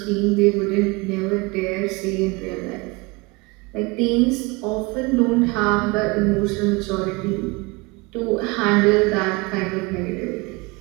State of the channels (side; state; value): left; quieter; 25.6 dB